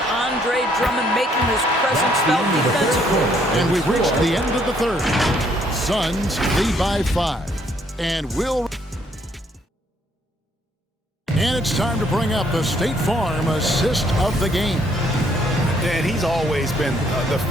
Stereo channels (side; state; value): both; normal; correlation 0.67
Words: Andre Drummond making his presence felt defensively. And we've reached the end of the third. Suns lead by 5. And it's time to bring up the State Farm assist of the game. And he's always been the